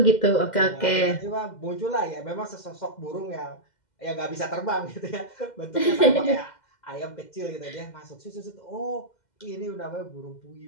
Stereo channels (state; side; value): late; right; 2.1 ms